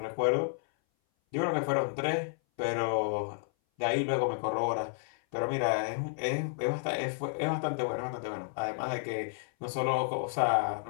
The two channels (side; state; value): right; silent; 57 dB below the other